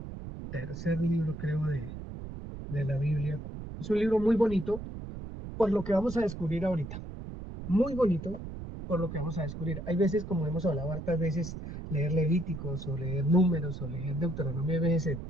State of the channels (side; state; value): right; noise; rumble, 9 dB below the sound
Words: tercer libro, creo, de la Biblia. Es un libro muy bonito por lo que vamos a descubrir ahorita. Muy bonito por lo que vamos a descubrir. Hay veces, como hemos hablado hartas veces, leer Levíticos o leer Números o leer Deuteronomio a veces se